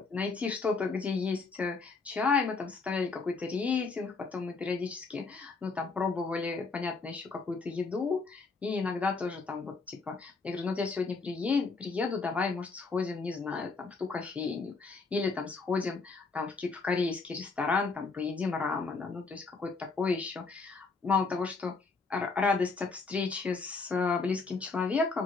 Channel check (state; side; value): quieter; right; 4.2 dB